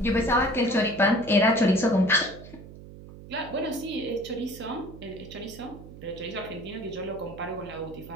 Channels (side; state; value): right; noise; hum, 16 dB below the sound